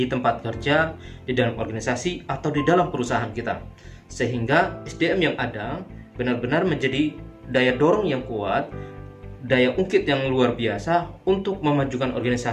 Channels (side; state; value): both; identical; correlation 1.00